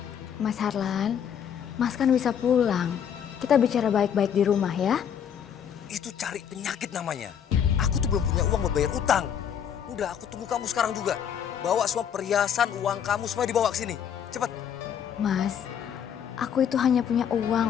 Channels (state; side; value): quieter; right; 8.4 dB